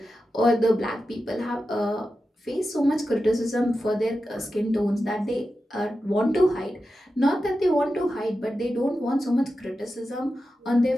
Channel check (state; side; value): normal; both; correlation 0.91